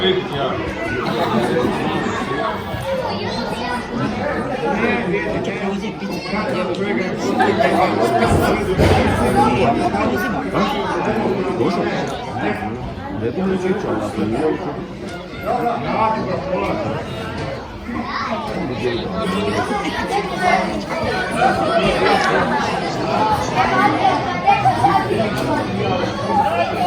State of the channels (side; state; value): both; identical; correlation 1.00